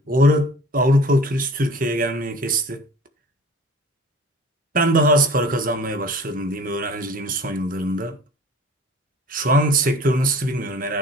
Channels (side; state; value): both; normal; correlation 0.44